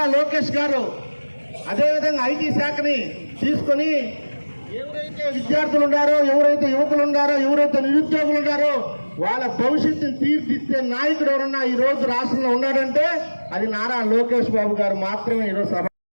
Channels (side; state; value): both; inverted; correlation -1.00